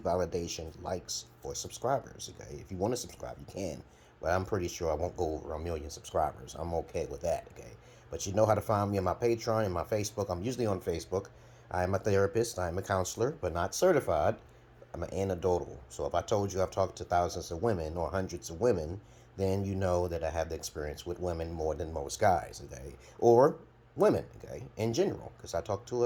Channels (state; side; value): identical; both; correlation 1.00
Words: validation, likes, or subscribers, okay? If you want to subscribe, you can. But I'm pretty sure I won't go over 1 million subscribers. I'm okay with that, okay? But you know how to find me on my Patreon and my Facebook. I'm usually on Facebook. I'm a therapist. I'm a counselor, but not certified. I'm an anecdotal. So if I told you I've talked to thousands of women or hundreds of women, then you know that I have the experience with women more than most guys, okay? Or women, okay, in general, because I talk to